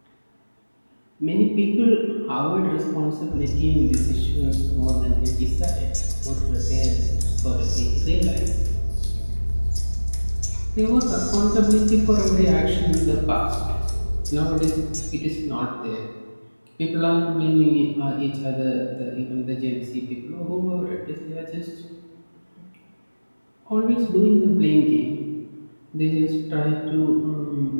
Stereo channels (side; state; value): both; inverted; correlation -1.00